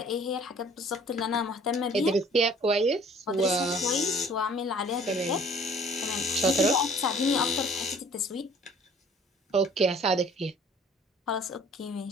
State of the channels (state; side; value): normal; both; correlation 0.52